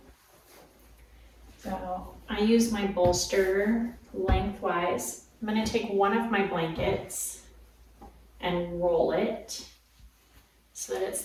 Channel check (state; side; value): identical; both; correlation 1.00